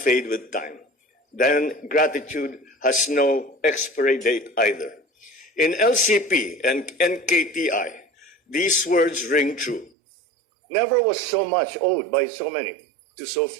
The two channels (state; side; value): drops out; left; at 9.9 s